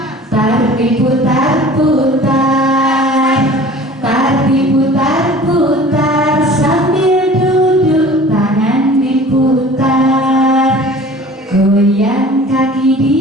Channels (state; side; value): normal; both; correlation 0.44